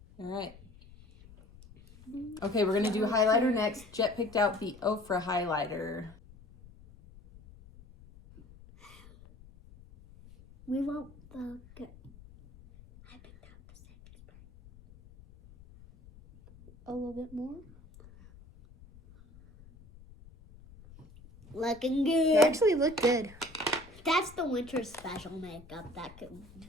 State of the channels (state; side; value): noise; left; rumble, 22 dB below the sound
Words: All right. Okay, we're going to do highlighter next. Jet picked out the OFRA highlighter. We want the good. I picked out the setting spray. A little bit more. Looking good. You actually look good. That's the winter special makeup. That could